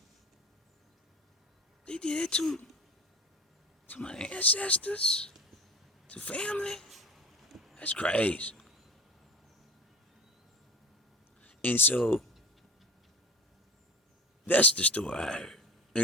They did it to my ancestors, to family? That's crazy. And so that's the story I heard.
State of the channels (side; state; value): both; normal; correlation 0.34